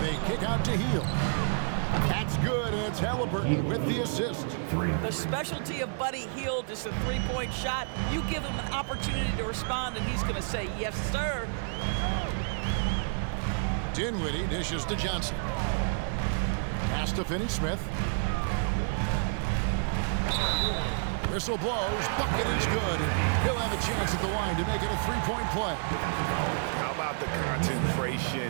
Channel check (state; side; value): silent; left; digital silence